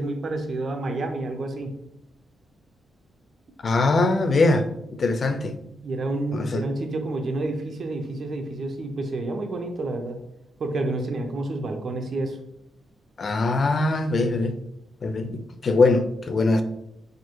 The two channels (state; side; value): normal; both; correlation 0.82